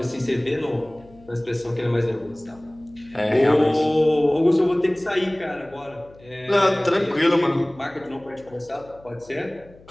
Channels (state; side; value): noise; left; hum, 25 dB below the sound